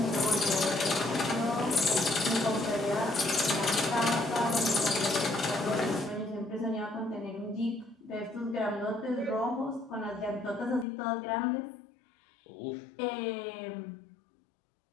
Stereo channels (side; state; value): right; drops out; at 10.9 s